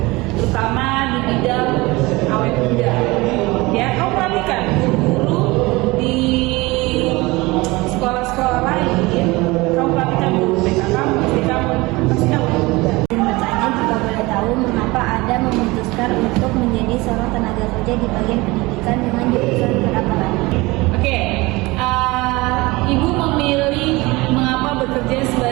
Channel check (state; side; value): quieter; left; 22.3 dB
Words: terutama di bidang awet muda. Ya, kamu perhatikan guru di sekolah-sekolah lain, kamu perhatikan guru BK kamu, SD kamu, pasti awet muda. Izin bertanya, jika boleh tahu, mengapa Anda memutuskan untuk menjadi seorang tenaga kerja di bagian pendidikan dengan jurusan perkantoran? Oke, ibu memilih mengapa bekerja